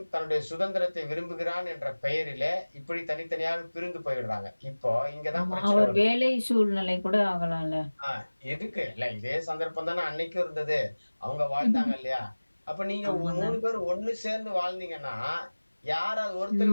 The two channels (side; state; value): both; inverted; correlation -1.00